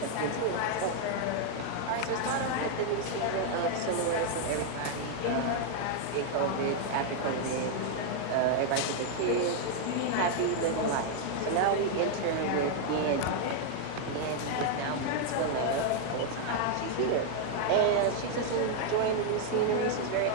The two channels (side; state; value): both; different; correlation 0.00